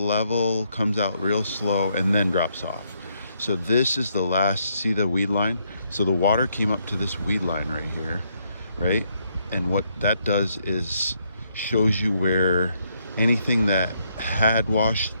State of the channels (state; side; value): inverted; both; correlation -0.74